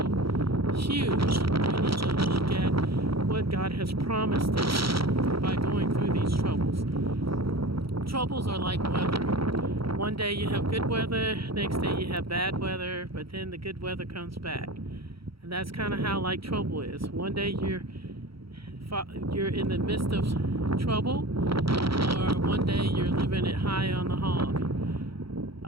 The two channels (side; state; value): left; late; 0.75 ms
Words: huge, we need to look at what God has promised us by going through these troubles. Troubles are like weather. One day you have good weather, next day you have bad weather, but then the good weather comes back. And that's kind of how like trouble is. One day you're in the midst of trouble, or one day you're living it high on the hog.